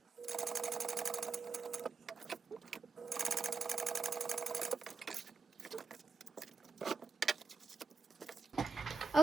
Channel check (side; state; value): left; quieter; 4.6 dB